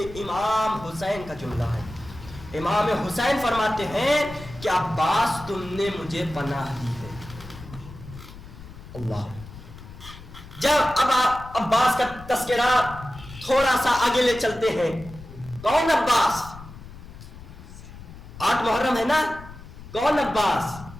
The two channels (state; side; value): noise; left; rumble, 16 dB below the sound